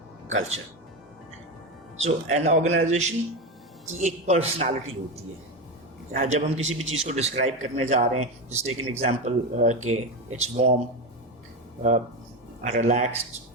culture. So an organisation की एक पर्सनालिटी होती है। जब हम किसी भी चीज़ को डिस्क्राइब करने जा रहे हैं, जस्ट टेक एन एग्जांपल के it's warm, relaxed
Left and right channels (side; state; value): both; normal; correlation 0.16